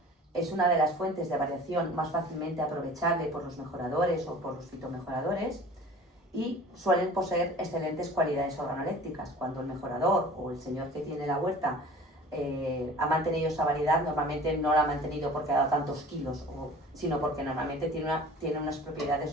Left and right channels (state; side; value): normal; both; correlation 0.43